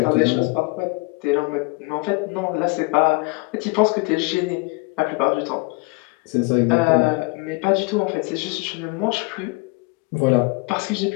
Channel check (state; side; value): quieter; right; 27.3 dB